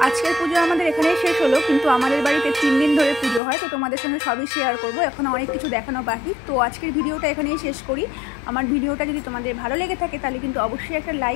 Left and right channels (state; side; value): drops out; right; at 3.4 s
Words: আজকের পুজো আমাদের এখানেই শেষ হলো, কিন্তু আমাদের বাড়িতে 3 দিন ধরে পুজো হয়, তো তোমাদের সঙ্গে সবই শেয়ার করবো। এখন অনেক কিছু দেখানো বাকি। তো আজকের ভিডিওটা এখানেই শেষ করি। আমার ভিডিওটা যদি তোমাদের ভালো লেগে থাকে তাহলে কিন্তু অবশ্যই একটা